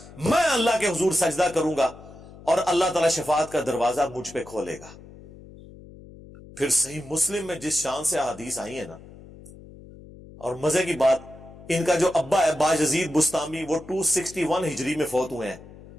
میں اللہ کے حضور سجدہ کروں گا اور اللہ تعالی شفاعت کا دروازہ مجھ پہ کھولے گا۔ پھر صحیح مسلم میں جس شان سے احادیث آئی ہیں نا، اور مزے کی بات ان کا جو ابا ہے باجزید بستامی وہ 261 ہجری میں فوت ہوئے ہیں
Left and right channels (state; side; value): noise; left; hum, 19 dB below the sound